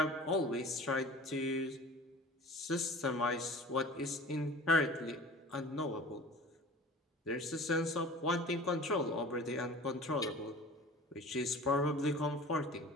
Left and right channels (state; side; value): normal; both; correlation 0.41